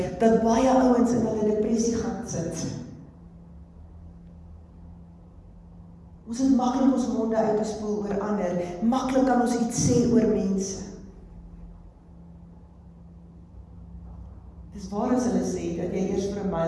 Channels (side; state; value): both; identical; correlation 1.00